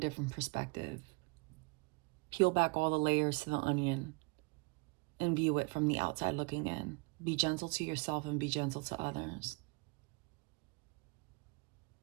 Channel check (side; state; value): left; quieter; 31.0 dB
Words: perspective. Peel back all the layers to the onion and view it from the outside looking in. Be gentle to yourself and be gentle to others.